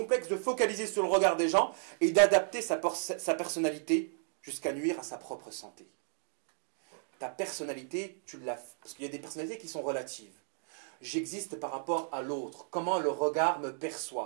de focaliser sur le regard des gens et d'adapter sa personnalité jusqu'à nuire à sa propre santé. Ta personnalité, parce qu'il y a des personnalités qui sont relatives. J'existe par rapport à l'autre, comment le regard me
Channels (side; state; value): left; silent; digital silence